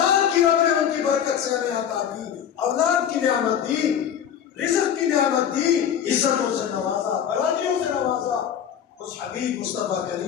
کی رب نے ان کی برکت سے ہمیں عطا کی، اولاد کی نعمت دی، رزق کی نعمت دی، عزتوں سے نوازا، برادریوں سے نوازا۔ اس حبیب مصطفیٰ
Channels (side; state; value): right; quieter; 9.0 dB